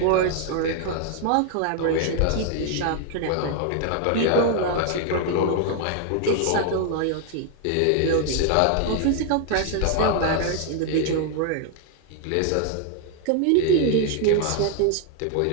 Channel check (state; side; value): different; both; correlation 0.01